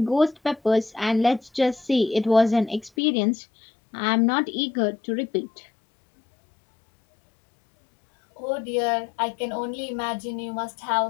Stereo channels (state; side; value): drops out; right; at 2.9 s